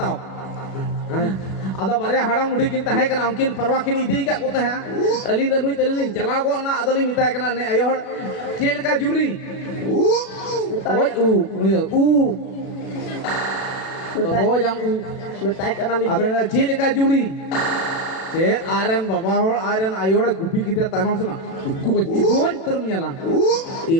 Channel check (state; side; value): late; right; 36 ms